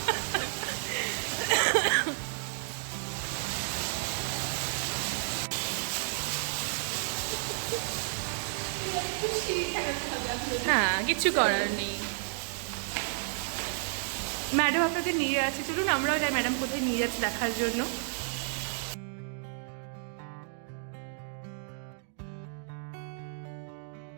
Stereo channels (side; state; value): left; silent; digital silence